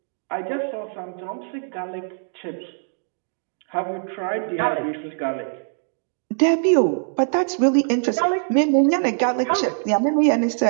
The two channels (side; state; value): left; silent; digital silence